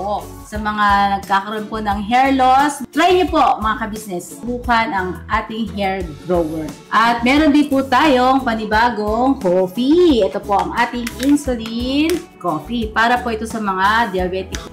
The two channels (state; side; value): identical; both; correlation 1.00